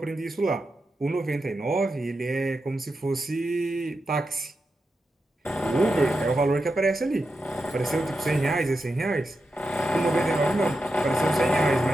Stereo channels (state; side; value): normal; both; correlation 0.88